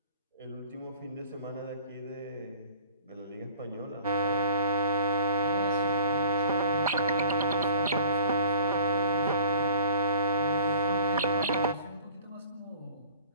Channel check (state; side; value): inverted; both; correlation -0.49